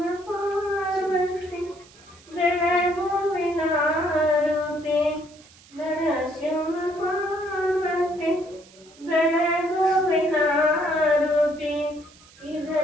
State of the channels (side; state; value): right; noise; hiss, 25 dB below the sound